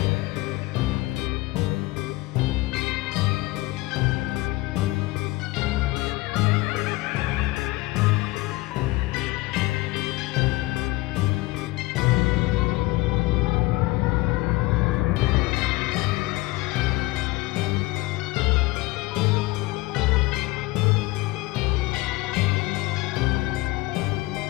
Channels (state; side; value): quieter; right; 20.7 dB